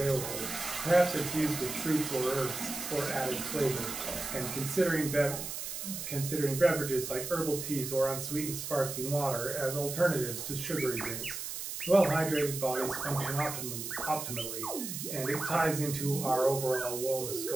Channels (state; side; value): noise; right; hiss, 6 dB below the sound